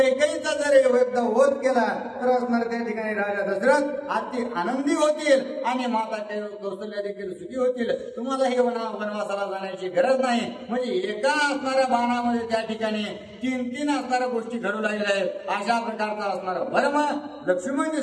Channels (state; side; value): identical; both; correlation 1.00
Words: जर एकदा वध केला तर असणार त्या ठिकाणी राजा दशरथ अति आनंदी होतील आणि माता कौशल्या देखील सुखी होतील. तुम्हाला हे वनवासाला जाण्याची गरज नाही. म्हणजे एका असणाऱ्या बाणामध्ये त्या ठिकाणी 3 असणाऱ्या गोष्टी घडू लागल्या आहेत. अशा प्रकारचा असणारा भरम लक्ष्मणजी